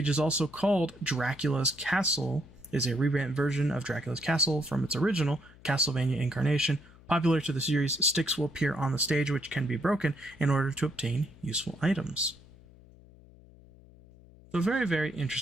is also called Dracula's Castle, is a revamped version of Dracula's Castle from its original Castlevania incarnation. Popular to the series, sticks will appear on the stage which can be broken in order to obtain useful items. So very, very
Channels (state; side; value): noise; left; hum, 23 dB below the sound